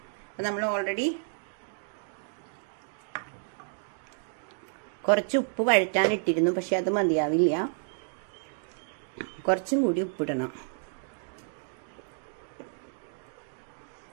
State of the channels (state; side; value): silent; left; digital silence